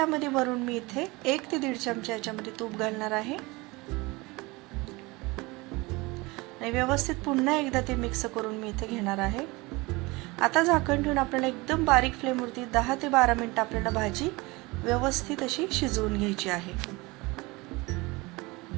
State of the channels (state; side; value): quieter; left; 23.6 dB